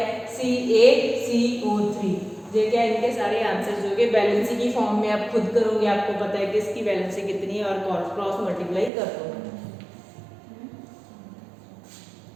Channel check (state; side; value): drops out; left; at 8.9 s